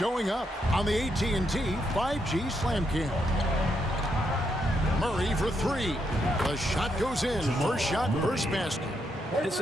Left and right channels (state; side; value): normal; both; correlation 0.79